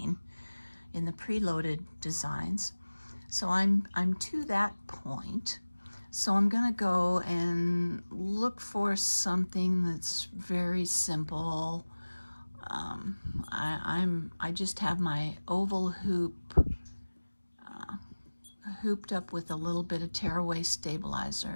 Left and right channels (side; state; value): both; inverted; correlation -1.00